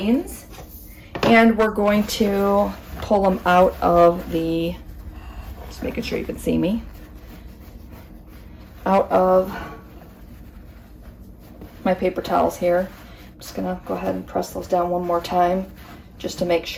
and we're going to pull them out of the, just making sure you can see me, out of my paper towels here. I'm just gonna go ahead and press those down one more time just to make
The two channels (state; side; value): identical; both; correlation 1.00